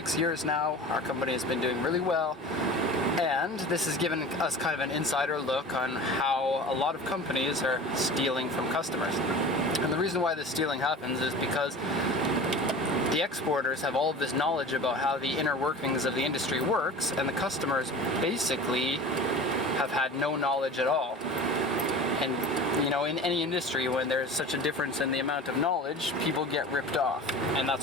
years now. Our company has been doing really well, and this has given us kind of an insider look on how a lot of companies are stealing from customers. And the reason why this stealing happens is because the exporters have all of this knowledge about how the inner workings of the industry works, and the customers basically have had no knowledge at all. And you know, in any industry, when there's such a difference in the amount of knowledge, people get ripped off, and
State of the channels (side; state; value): both; normal; correlation 0.37